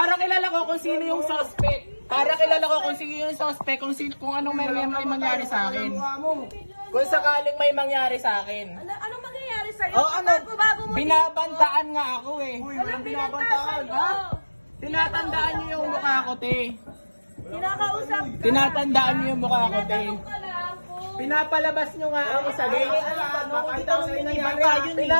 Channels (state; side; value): inverted; both; correlation -1.00